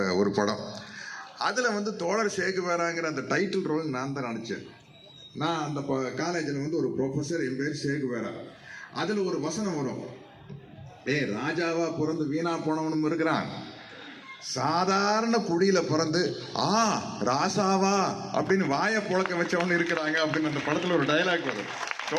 ஒரு படம். அதில் வந்து தோழர் சேகுவேராங்கிற அந்த டைட்டில் ரோல் நான் தான் நடித்தேன். நான் அந்த காலேஜில் வந்து ஒரு ப்ரொஃபஸர், என் பேர் சேகுவேரா. அதில் ஒரு வசனம் வரும், ராஜாவா பிறந்து வீணா போனவனும் இருக்கிறான், சாதாரண குடியில பிறந்து ராசாவா அப்படின்னு வாயை புழக்க வச்சவனு இருக்கிறாங்க அப்படின்னு அந்த படத்துல ஒரு டயலாக் வரும்.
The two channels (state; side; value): identical; both; correlation 1.00